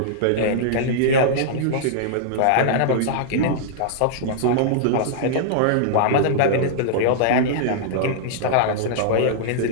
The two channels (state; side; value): different; both; correlation -0.02